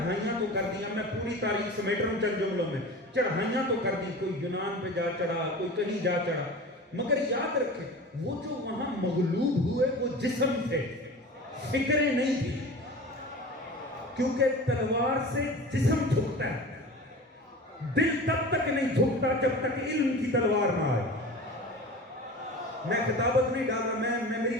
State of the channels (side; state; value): both; normal; correlation 0.35